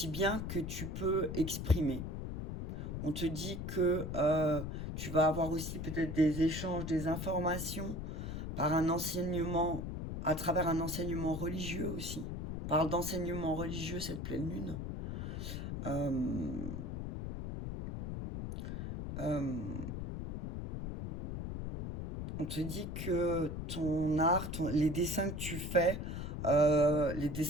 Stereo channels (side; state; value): left; noise; rumble, 4 dB below the sound